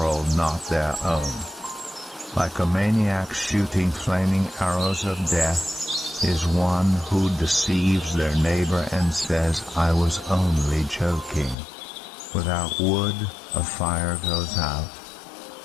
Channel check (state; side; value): drops out; right; at 11.6 s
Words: not their own. Like a maniac shooting flaming arrows of death is one who deceives their neighbor and says, "I was only joking." Without wood, a fire goes out.